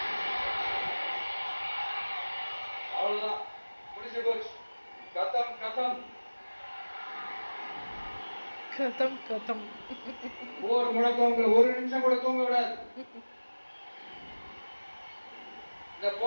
அவ்வளவுதான், முடிஞ்சு போச்சு. கதம் கதம் கதம் கதம். ஒரு முழக்கம் ஒரு நிமிஷம் கூட தூங்க விடாது. இந்த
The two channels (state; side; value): inverted; both; correlation -1.00